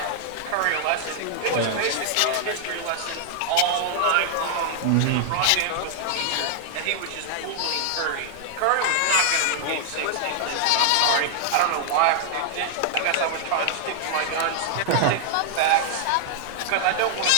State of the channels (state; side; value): different; both; correlation -0.01